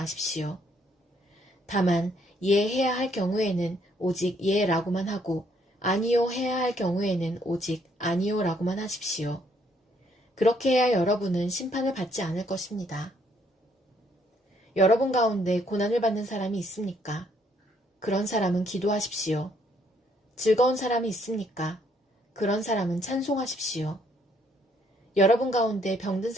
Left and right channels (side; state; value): both; normal; correlation 0.68